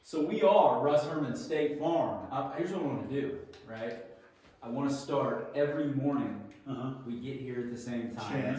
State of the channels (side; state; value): both; identical; correlation 1.00